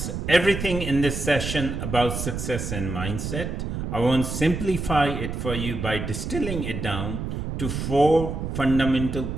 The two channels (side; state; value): right; noise; rumble, 4 dB below the sound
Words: everything in this session about success and mindset. I want to simplify it for you by distilling it down to 4 fundamental